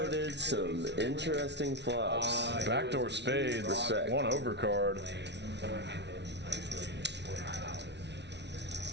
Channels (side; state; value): left; late; 0.50 ms